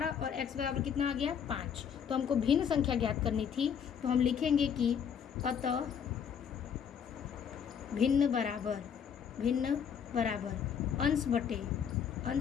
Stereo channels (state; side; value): quieter; right; 7.6 dB